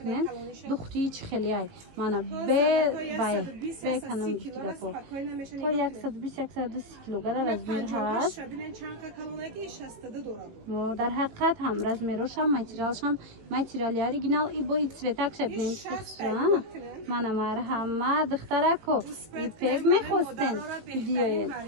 دختری چه خیلی ای مانا به کنم دیگه تا 120 120 کیلوگرم از بین هست در حقیقت هم رزمیروش هم ماتریالی اوریجینال ای با цветак شبین مانا مرحمت دخترکو ایپک میخواستن دیوید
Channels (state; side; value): late; left; 18 ms